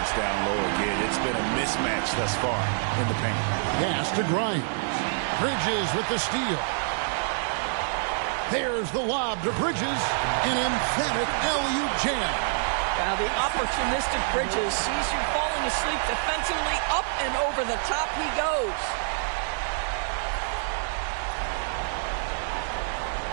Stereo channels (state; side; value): silent; left; digital silence